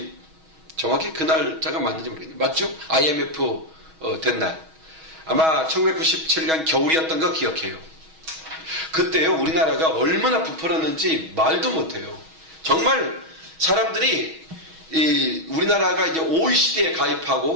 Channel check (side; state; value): left; late; 6.2 ms